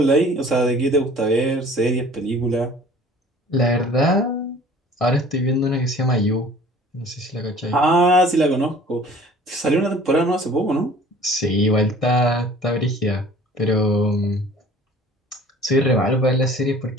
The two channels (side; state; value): both; normal; correlation 0.48